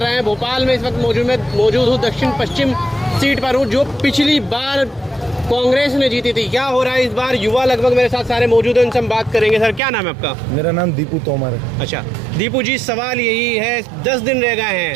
रहे हैं। भोपाल में इस वक्त मौजूद हूँ, दक्षिण पश्चिम सीट पर हूँ, जो पिछली बार कांग्रेस ने जीती थी। क्या हो रहा है इस बार? युवा लगभग मेरे साथ सारे मौजूद हैं, उनसे हम बात करेंगे। सर, क्या नाम है आपका? मेरा नाम दीपू तोमर है। अच्छा दीपू जी, सवाल यही है, 10 दिन रह गए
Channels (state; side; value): drops out; left; at 9.8 s